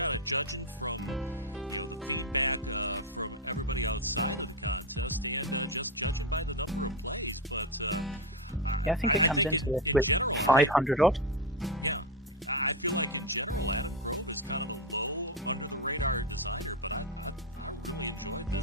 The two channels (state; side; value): normal; both; correlation 0.11